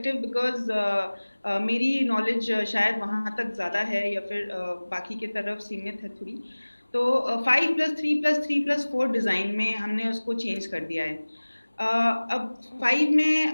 because मेरी knowledge शायद वहाँ तक ज़्यादा है या फिर बाकी की तरफ सीमित है थोड़ी. तो 5+3+3+4 डिज़ाइन में हमने उसको चेंज कर दिया है. अब 5 में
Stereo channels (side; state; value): both; inverted; correlation -1.00